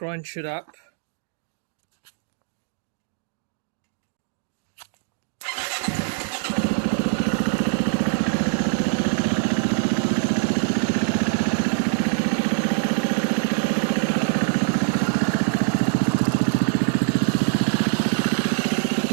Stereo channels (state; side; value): silent; left; 63 dB below the other